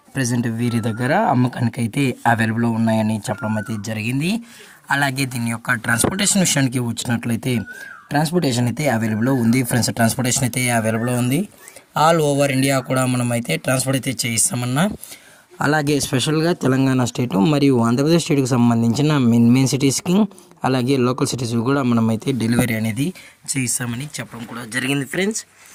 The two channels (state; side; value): identical; both; correlation 1.00